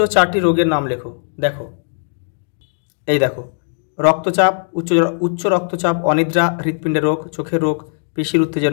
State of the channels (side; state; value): right; silent; digital silence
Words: 4টি রোগের নাম লেখো। দেখো এই দেখো, রক্তচাপ, উচ্চ রক্তচাপ, অনিদ্রা, হৃৎপিণ্ডের রোগ, চোখের রোগ, পেশির